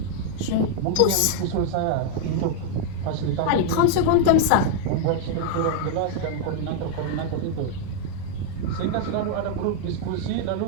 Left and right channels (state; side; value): different; both; correlation 0.00